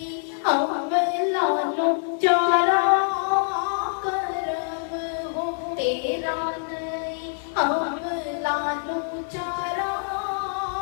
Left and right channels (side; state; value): right; silent; digital silence